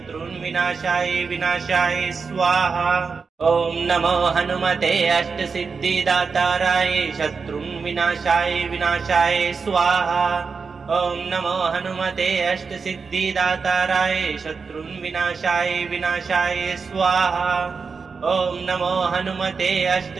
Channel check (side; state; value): left; quieter; 5.1 dB